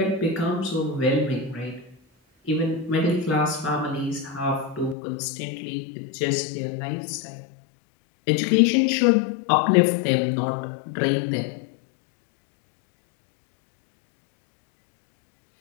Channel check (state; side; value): drops out; right; at 5.0 s